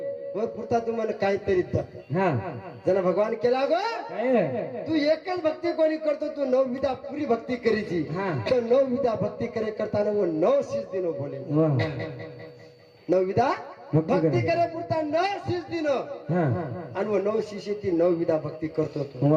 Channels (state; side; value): identical; both; correlation 1.00